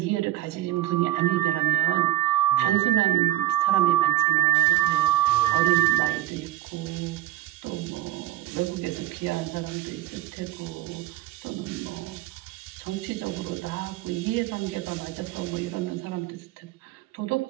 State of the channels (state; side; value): quieter; left; 14.4 dB